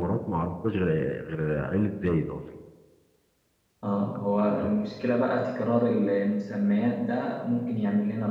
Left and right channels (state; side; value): identical; both; correlation 1.00